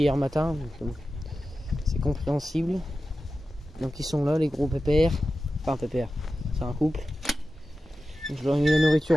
matin, donc c'est compréhensible. Donc ils sont là les gros pépères. Enfin pépères, c'est un couple. Donc, je leur ai mis la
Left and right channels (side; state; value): both; normal; correlation 0.93